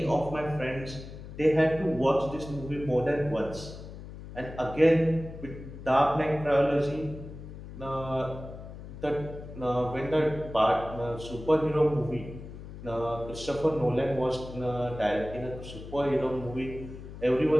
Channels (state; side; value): noise; left; hum, 13 dB below the sound